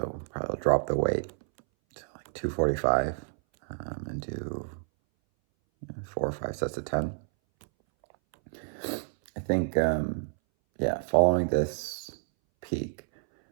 probably drop the weight to like 245 and do 4 or 5 sets of 10. I think, following this peak,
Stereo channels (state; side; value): silent; left; 58 dB below the other